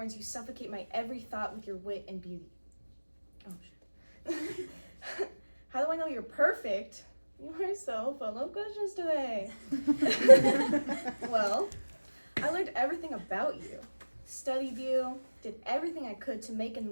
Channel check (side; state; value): both; inverted; correlation -1.00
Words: you suffocate my every thought with your wit and beauty. Oh shit. How do I know you're perfect? You are so full of questions today. Well, I learned everything about you, studied you, did everything I could to make and